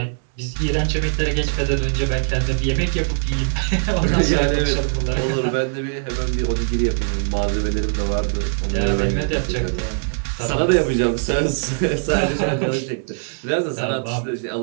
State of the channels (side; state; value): left; silent; digital silence